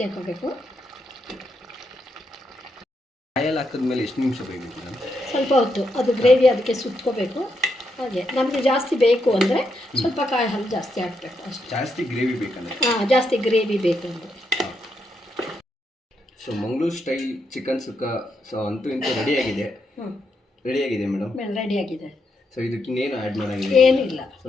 ಹಾಕೋಬೇಕು. ಕಾಯಲ್ಲಿ ಹಾಕಿದ್ಮೇಲೆ ಎಷ್ಟು ನಿಮಿಷ ಬೇಕಬೇಕು ಮೇಡಮ್? ಸ್ವಲ್ಪ ಹೊತ್ತು ಅದು ಗ್ರೇವಿ ಅದಕ್ಕೆ ಸುತ್ಕೋಬೇಕು. ಹಾಗೆ ನಮಗೆ ಜಾಸ್ತಿ ಬೇಕು ಅಂದರೆ ಸ್ವಲ್ಪ ಕಾಯಿ ಹಾಲು ಜಾಸ್ತಿ ಹಾಕಬೇಕು ಅಷ್ಟೇ. ಜಾಸ್ತಿ ಗ್ರೇವಿ ಬೇಕಂದ್ರೆ? ಹಾಂ, ಜಾಸ್ತಿ ಗ್ರೇವಿ ಬೇಕು ಅಂದರೆ. ಸೊ ಮಂಗಳೂರು ಸ್ಟೈಲ್ ಚಿಕನ್ ಸುಕ್ಕ ಸೊ ಅಂತೂ ಇಂತೂ ರೆಡಿಯಾಗಿದೆ. ರೆಡಿಯಾಗಿದೆ ಮೇಡಮ್. ರೆಡಿಯಾಗಿದೆ. ಸೊ ಇದಕ್ಕೆ ಇನ್ನೇನು ಆ್ಯಡ್ ಮಾಡೋಂಗಿಲ್ಲ? ಏನಿಲ್ಲ, ಸೊ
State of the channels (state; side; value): normal; both; correlation 0.81